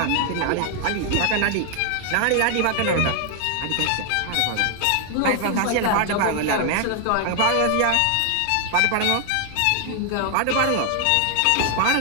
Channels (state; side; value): different; both; correlation 0.00